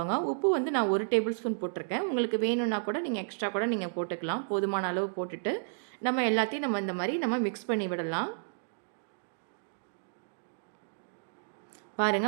உப்பு வந்து நான் 1 டேபிள் ஸ்பூன் போட்டிருக்கேன். உங்களுக்கு வேணும்னா கூட நீங்கள் எக்ஸ்ட்ரா கூட நீங்கள் போட்டுக்கலாம். போதுமான அளவு போட்டுட்டு நம்ம எல்லாத்தையும் நம்ம இந்த மாதிரி நம்ம மிக்ஸ் பண்ணி விடலாம்.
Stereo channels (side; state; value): left; silent; digital silence